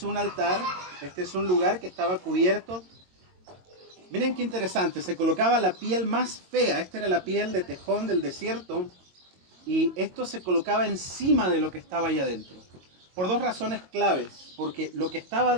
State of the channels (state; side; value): late; left; 22 ms